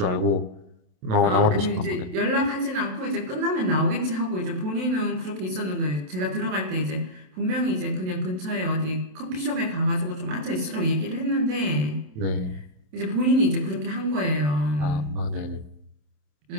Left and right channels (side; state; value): left; late; 27 ms